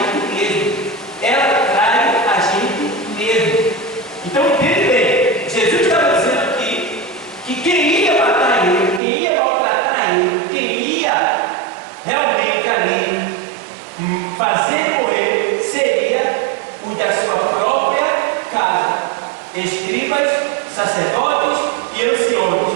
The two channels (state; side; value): drops out; left; at 9.0 s